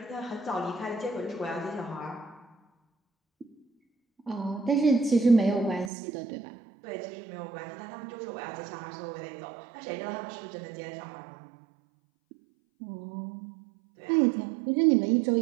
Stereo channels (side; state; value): left; drops out; at 5.9 s